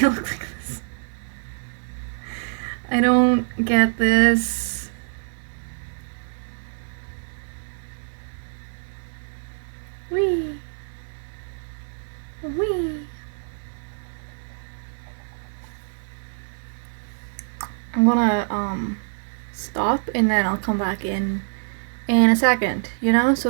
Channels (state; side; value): silent; left; 62 dB below the other